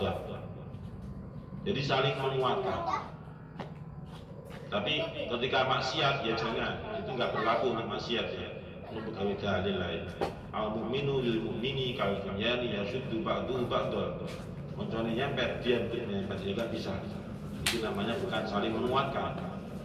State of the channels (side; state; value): both; identical; correlation 1.00